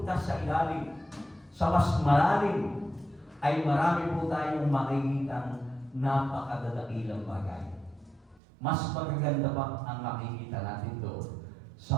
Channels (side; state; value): left; drops out; at 8.4 s